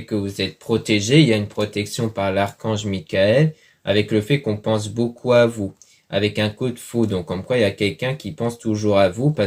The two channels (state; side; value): identical; both; correlation 1.00